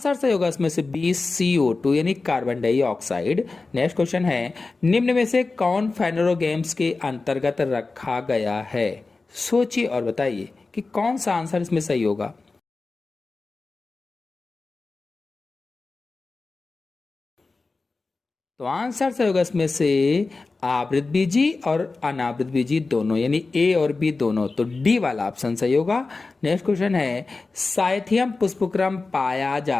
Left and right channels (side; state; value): right; quieter; 3.8 dB